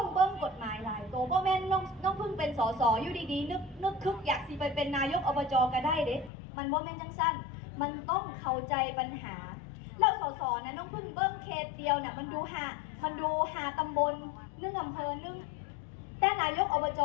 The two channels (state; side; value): drops out; right; at 6.3 s